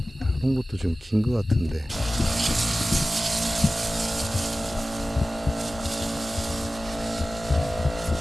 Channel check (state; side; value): normal; both; correlation 0.95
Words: 이런 것도 좀 긴 것 같은데.